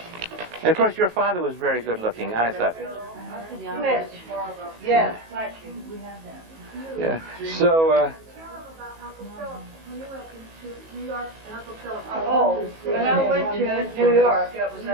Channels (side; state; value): left; late; 19 ms